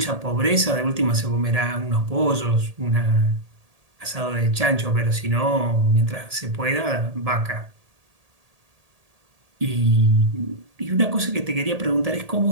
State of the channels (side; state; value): left; late; 1.8 ms